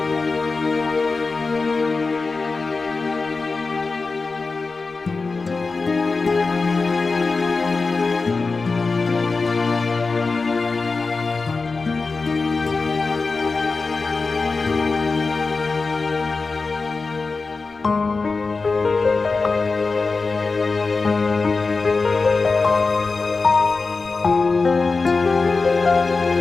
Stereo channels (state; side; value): quieter; right; 4.1 dB